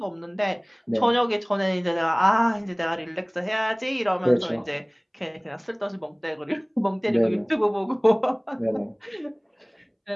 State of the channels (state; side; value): identical; both; correlation 1.00